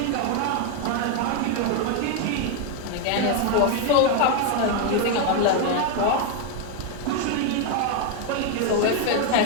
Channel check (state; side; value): different; both; correlation 0.01